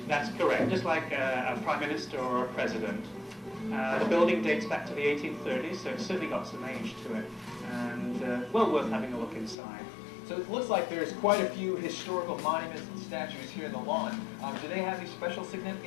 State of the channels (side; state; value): right; drops out; at 9.6 s